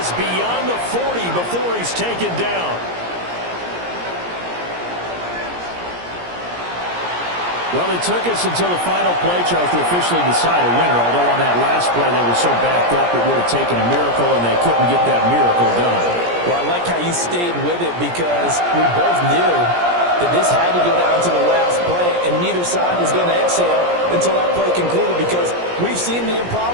beyond the 40 before he's taken down. Well, it took us until the final play chart to officially decide a winner, although on that last play they were so backed up it would have taken a miracle, and they couldn't get that miracle done. Well, I like how you stayed with it, because we both knew that this had to go down to the last play, and neither side was going to exhale until that play concluded, because we've seen the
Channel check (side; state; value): left; late; 17 ms